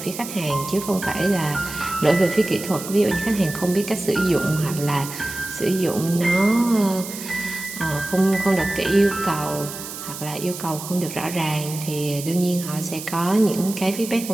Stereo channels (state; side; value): noise; right; hiss, 10 dB below the sound